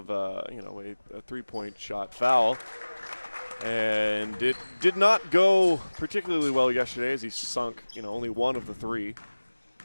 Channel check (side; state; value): both; inverted; correlation -1.00